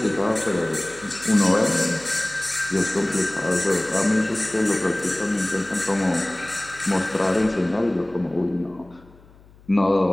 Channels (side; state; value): left; noise; hum, 26 dB below the sound